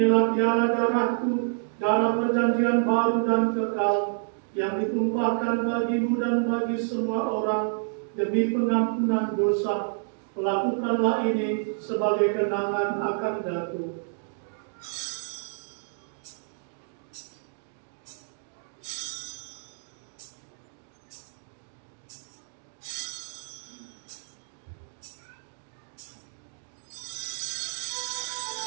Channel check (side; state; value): left; silent; digital silence